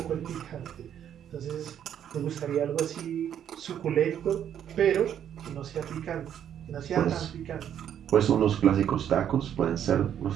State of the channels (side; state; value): left; quieter; 9.6 dB